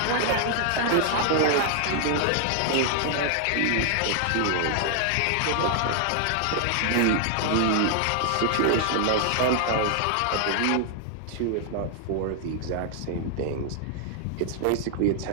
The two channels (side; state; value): both; different; correlation 0.00